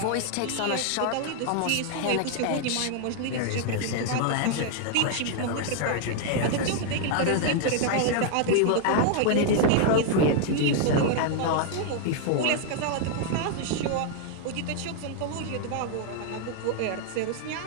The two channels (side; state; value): both; different; correlation 0.00